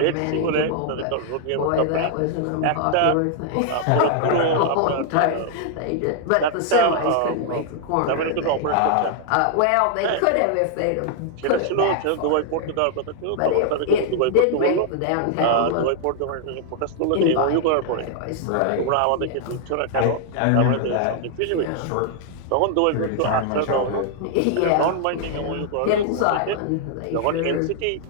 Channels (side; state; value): both; different; correlation 0.00